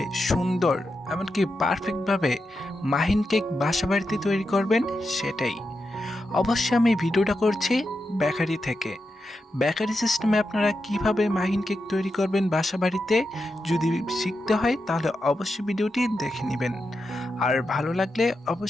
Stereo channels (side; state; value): both; normal; correlation 0.88